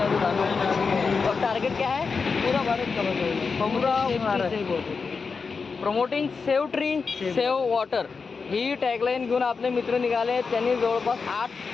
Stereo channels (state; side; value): quieter; right; 5.0 dB